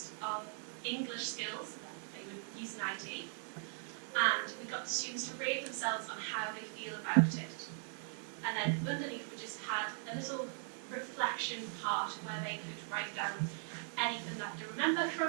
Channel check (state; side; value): silent; left; 51 dB below the other